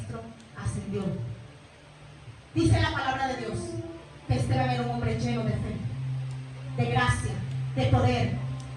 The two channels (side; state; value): both; identical; correlation 1.00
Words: ascendió. Dice la palabra de Dios que Esteban era un hombre lleno de fe, de gracia, de poder,